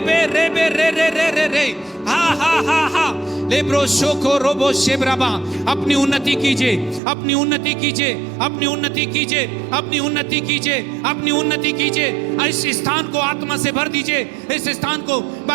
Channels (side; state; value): left; drops out; at 7.0 s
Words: रेबे रे रे रे रे रे हा हा हा हा लेब्रो शोको रोबो शेब्राबा। अपनी उन्नति कीजिए, अपनी उन्नति कीजिए, अपनी उन्नति कीजिए, अपनी उन्नति कीजिए, अपनी उन्नति कीजिए। इस स्थान को आत्मा से भर दीजिए। इस स्थान को